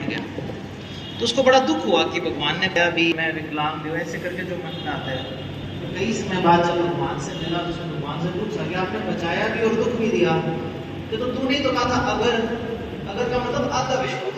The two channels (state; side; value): identical; both; correlation 1.00